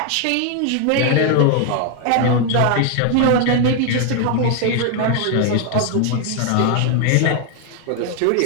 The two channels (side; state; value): both; different; correlation 0.00